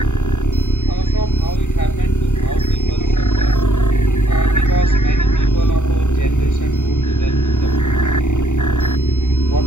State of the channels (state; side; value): late; right; 0.85 ms